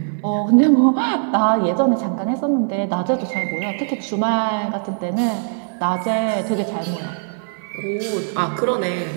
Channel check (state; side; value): silent; left; digital silence